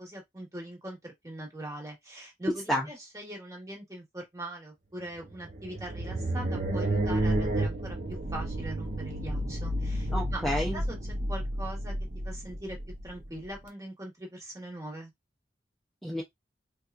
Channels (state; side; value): normal; both; correlation 0.80